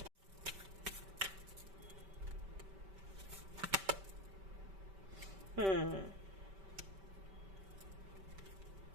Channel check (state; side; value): late; left; 5.2 ms